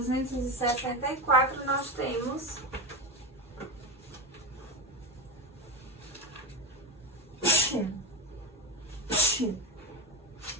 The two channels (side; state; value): both; normal; correlation 0.18